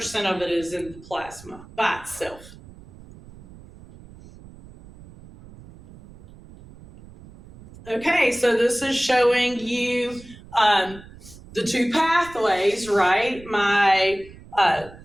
of it is in the plasma by itself. Okay, so this is showing you the two pathways, right? My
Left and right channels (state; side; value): noise; right; rumble, 20 dB below the sound